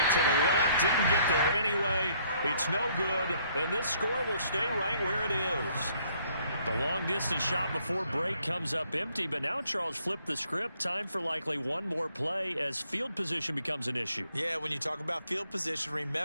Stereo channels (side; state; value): both; inverted; correlation -0.65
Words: to the left. Didn't get there anyway. It's no good. And this score will stay right where it is. The long-distance shot before break comes up empty, but now Charles flipped the script. Time for likely one more play as field position becomes an issue. Yeah, when you talk about field position,